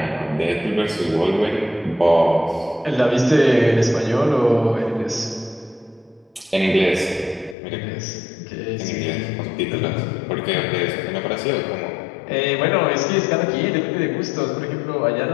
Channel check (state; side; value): drops out; right; at 7.6 s